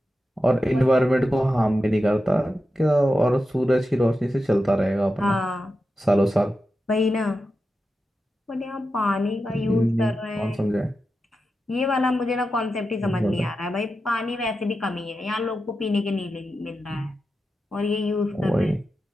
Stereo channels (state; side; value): normal; both; correlation 0.90